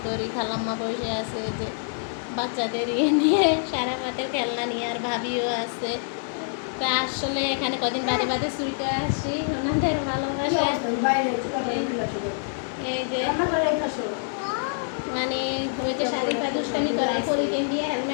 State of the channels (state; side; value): silent; right; digital silence